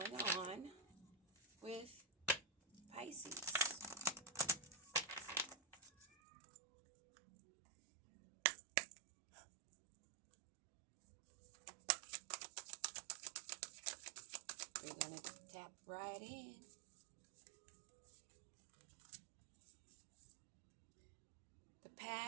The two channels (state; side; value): drops out; left; at 6.1 s